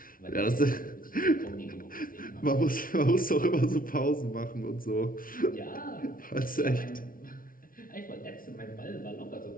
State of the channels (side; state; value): right; late; 0.41 ms